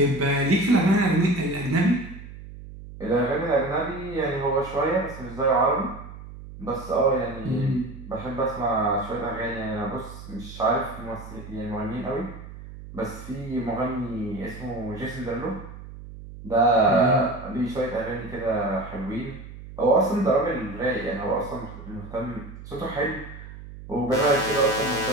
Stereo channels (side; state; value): right; noise; hum, 14 dB below the sound